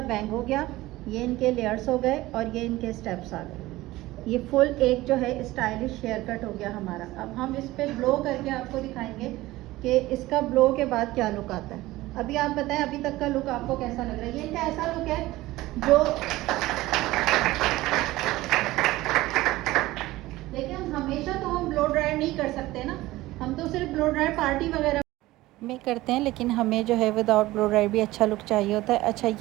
बैंग हो गया, ये इनके लेयर्स हो गए और ये इनके स्टेप्स आ गए। ये फुल एक जो है स्टाइलिश हेयर कट हो गया हमारा। अब हम इस पे ब्लो करके आपको दिखाएंगे कि इसका ब्लो के बाद क्या लुक आता है। अभी आप बताएं अभी तक का लुक आपको कैसा लग रहा है। ये इनका ऐसा लुक है जो देखिए, हम हमेशा तो हम ब्लो ड्रायर नहीं कर सकते ना, हम तो सिर्फ ब्लो ड्रायर पार्टी वगैरह। में करते हैं, लेकिन हमें जो है विदाउट ब्लो ड्राई भी अच्छा लुक चाहिए होता है। अच्छा,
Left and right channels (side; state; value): left; quieter; 17.9 dB